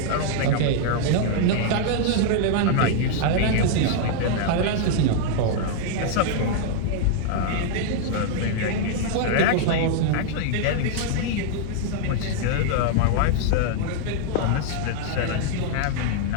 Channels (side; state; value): both; different; correlation -0.01